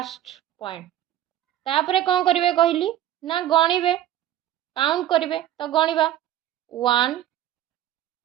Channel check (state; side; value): quieter; left; 12.4 dB